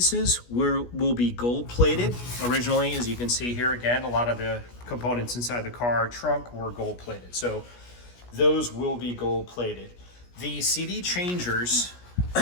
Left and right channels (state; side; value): late; right; 17 ms